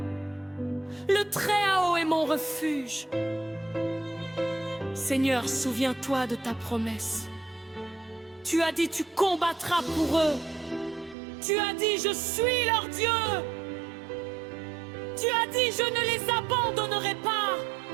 le Très-Haut est mon refuge. Seigneur, souviens-toi de ta promesse. Tu as dit, tu combattras pour eux. Tu as dit, je suis leur Dieu. Tu as dit, je ne les abandonnerai pas.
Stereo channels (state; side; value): drops out; left; at 11.2 s